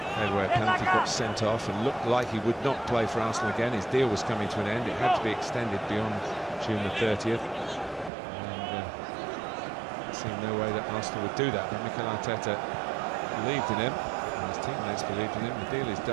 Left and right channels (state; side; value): drops out; left; at 8.1 s